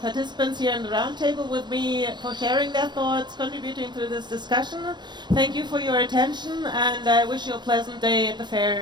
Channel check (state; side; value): late; left; 0.22 ms